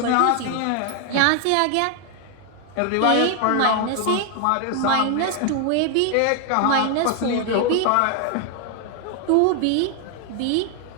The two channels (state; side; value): different; both; correlation 0.00